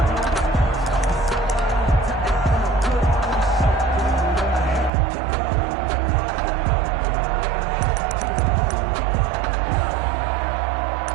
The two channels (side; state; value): left; drops out; at 4.9 s